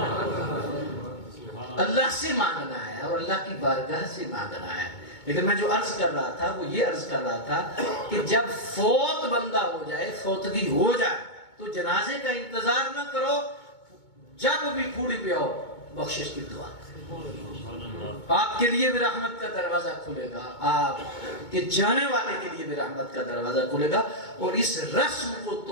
اللہ سے مانگنا ہے اور اللہ کی بارگاہ سے مانگنا ہے. لیکن میں جو عرض کر رہا تھا وہ یہ عرض کر رہا تھا کہ جب فوت بندہ ہو جائے، فوتگی ہو جائے تو جنازے کا انتظار نہ کرو، جب بھی پھوڑی پہ آؤ بخشش کی دعا. آپ کے لیے بھی رحمت کا دروازہ کھلے گا، آپ کے جانے والے کے لیے بھی رحمت کا دروازہ کھلے گا. اور اس رسم کو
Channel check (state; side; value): late; right; 2.2 ms